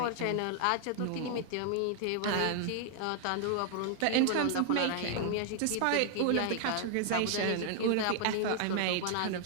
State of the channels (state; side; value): different; both; correlation 0.00